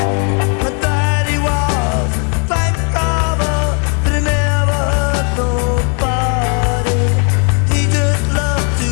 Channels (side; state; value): right; quieter; 34.4 dB